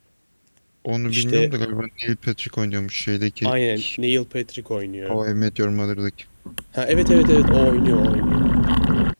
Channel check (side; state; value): both; inverted; correlation -1.00